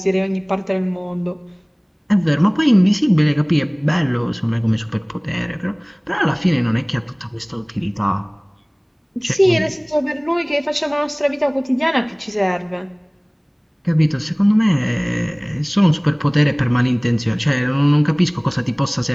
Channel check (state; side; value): identical; both; correlation 1.00